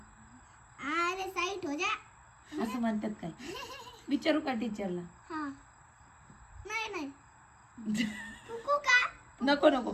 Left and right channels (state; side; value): identical; both; correlation 1.00